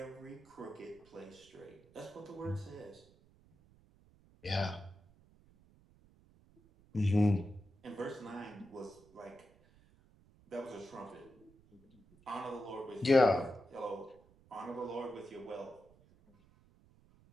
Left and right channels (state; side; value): noise; right; rumble, 27 dB below the sound